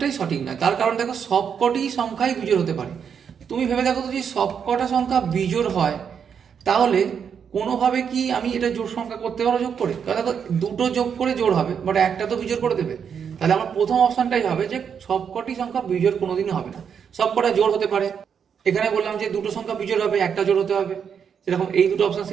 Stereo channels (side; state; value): left; quieter; 7.3 dB